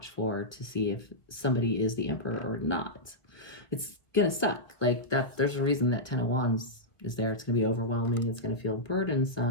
for to see if somebody is the emperor or not. It's going to suck. Like that, there's a reason that 10 of Wands is there. It's going to be overwhelming. It's going to feel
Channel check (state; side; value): late; right; 1.4 ms